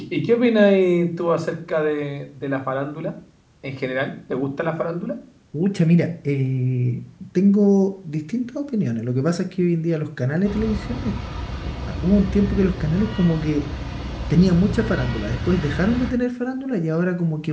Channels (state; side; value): identical; both; correlation 1.00